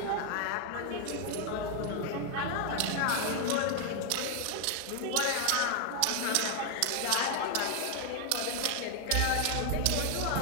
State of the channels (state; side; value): different; both; correlation 0.00